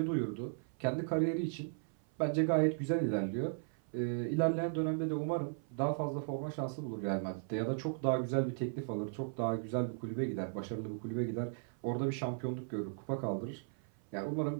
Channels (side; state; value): left; silent; 53 dB below the other